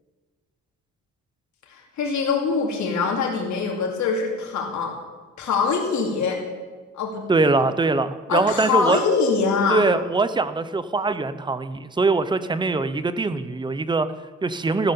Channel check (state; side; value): normal; both; correlation 0.39